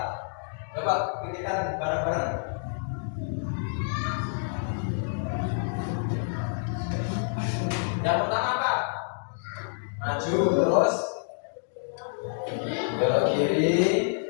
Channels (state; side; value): silent; right; digital silence